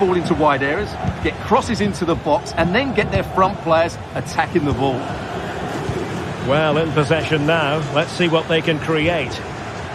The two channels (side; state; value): both; identical; correlation 1.00